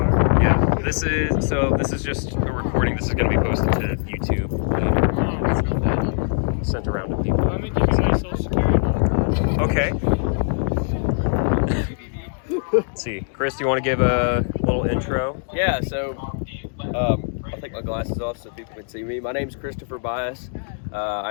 Yeah, this is just a recording. This is going to be posted to YouTube later. Sent around to people. Let me give you my social security number. Okay. Let's see. Chris, do you want to give a little intro? Yeah, so I'll take my glasses off so people can see me. My name is Christopher Bias.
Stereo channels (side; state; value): right; silent; digital silence